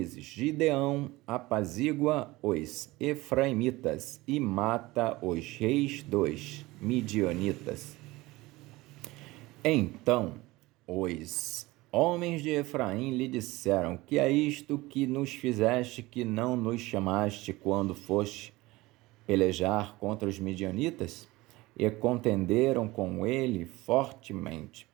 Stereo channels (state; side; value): quieter; left; 20.2 dB